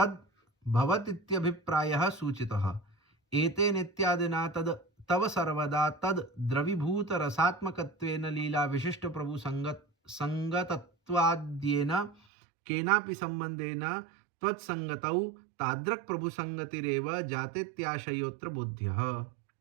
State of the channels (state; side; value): drops out; left; at 12.2 s